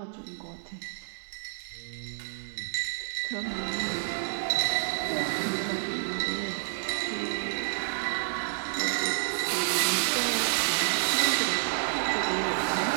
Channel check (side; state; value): left; silent; digital silence